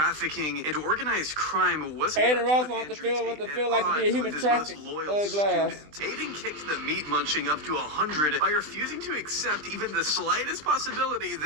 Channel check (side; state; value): left; late; 20 ms